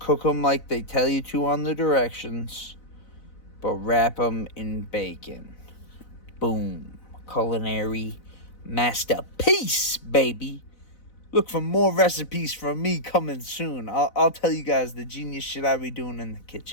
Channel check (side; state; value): right; late; 4.0 ms